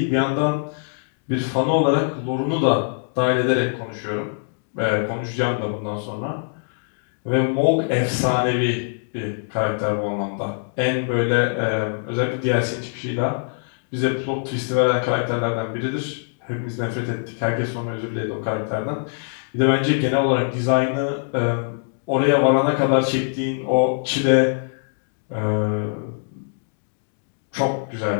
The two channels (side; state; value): right; silent; digital silence